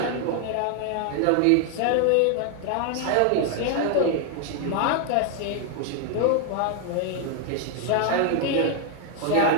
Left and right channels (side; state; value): both; different; correlation 0.00